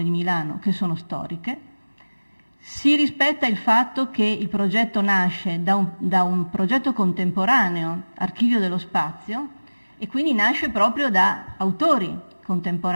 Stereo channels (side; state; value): both; inverted; correlation -1.00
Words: di Milano che sono storiche. Si rispetta il fatto che il progetto nasce da un progetto contemporaneo, Archivio dello Spazio, e quindi nasce proprio da autori